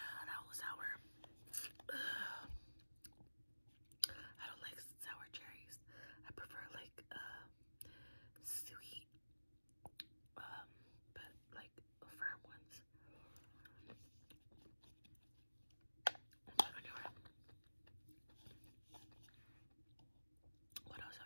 That was sour. I don't like sour cherries. I prefer like sweet, but like firm ones. But anyway, what else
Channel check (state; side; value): inverted; both; correlation -1.00